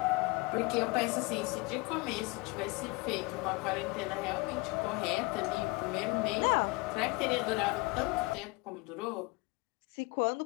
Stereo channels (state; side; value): quieter; right; 24.4 dB